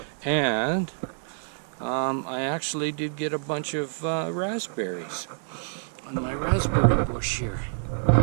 And I actually did get a bunch of raspberries on my raspberry bush here.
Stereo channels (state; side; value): silent; left; digital silence